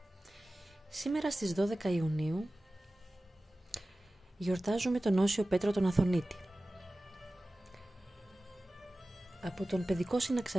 Σήμερα στις 12 Ιουνίου γιορτάζουμε τον Όσιο Πέτρο τον Αθωνίτη. Από τον παιδικό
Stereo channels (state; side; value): normal; both; correlation 0.96